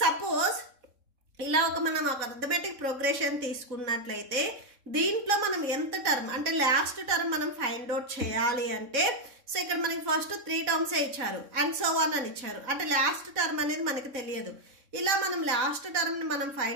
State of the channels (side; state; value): left; late; 3.7 ms